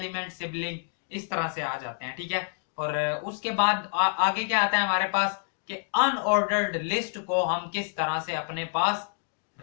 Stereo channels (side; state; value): right; silent; digital silence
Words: sibling, इस तरह से आ जाते हैं। ठीक है, और उसके बाद आगे क्या आता है हमारे पास कि अनऑर्डर्ड लिस्ट को हम किस तरह से अपने पास